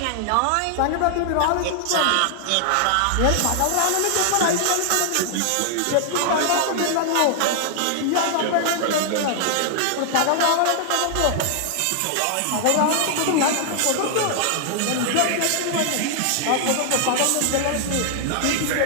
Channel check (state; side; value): different; both; correlation 0.00